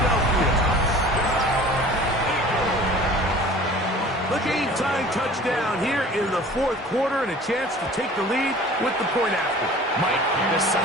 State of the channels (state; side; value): normal; both; correlation 0.45